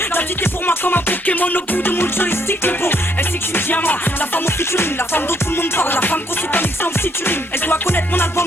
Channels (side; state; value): both; normal; correlation 0.70